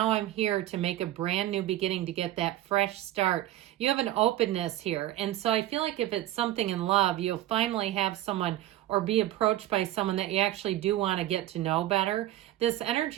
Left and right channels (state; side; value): quieter; left; 14.4 dB